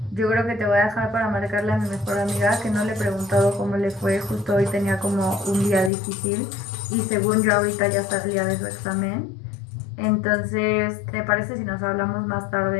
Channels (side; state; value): right; drops out; at 5.9 s